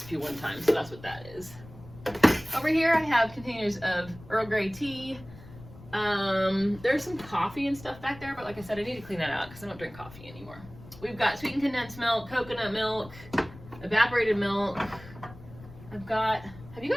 1 time. So that's what that is. Over here I have containers of Earl Grey tea. There's some coffee and stuff back there, but like I said, I need to clean that out because I don't drink coffee anymore. We've got sweetened condensed milk, coconut milk, evaporated milk. I've got, have you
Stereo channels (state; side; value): noise; left; rumble, 18 dB below the sound